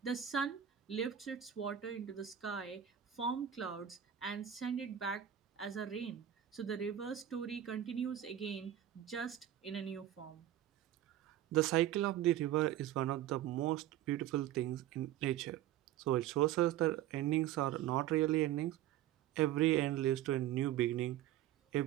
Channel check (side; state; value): left; quieter; 11.6 dB